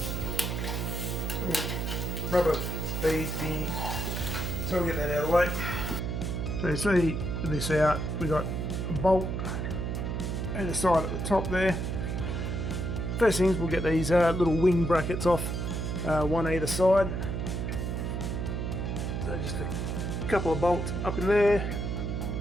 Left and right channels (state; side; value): noise; right; hum, 2 dB below the sound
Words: little rubber bead thingy, so we'll get that out of the way. So you see this out, we got a bolt either side at the top there. First things, we'll get these little wing brackets off, one either side. So just a couple of bolts up in there